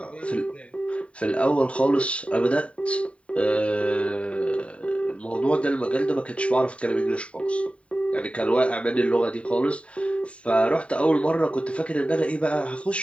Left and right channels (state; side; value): late; right; 0.063 ms